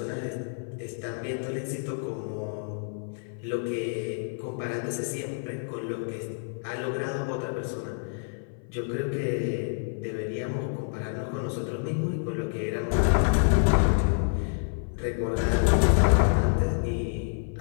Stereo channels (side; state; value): right; silent; 56 dB below the other